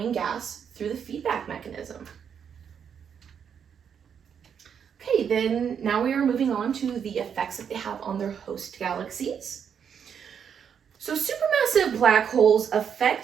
gas through the feedback mechanism. Okay, then now we are moving on to the effects that they have on their host galaxies. So supermassive black holes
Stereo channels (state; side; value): quieter; left; 7.6 dB